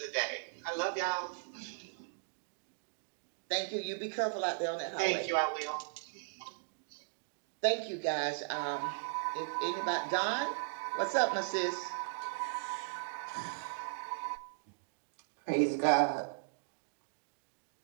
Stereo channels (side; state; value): left; silent; digital silence